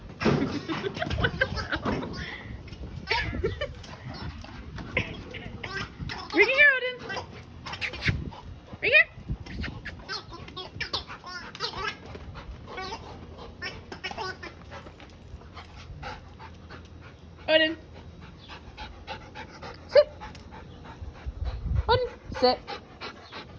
What the hell? Bring it here, Odin. Bring it here. Odin. Sit. Odin, sit.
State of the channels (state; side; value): identical; both; correlation 1.00